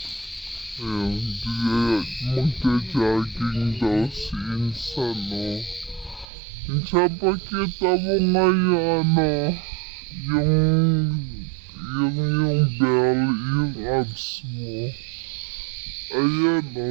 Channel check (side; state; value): left; drops out; at 6.2 s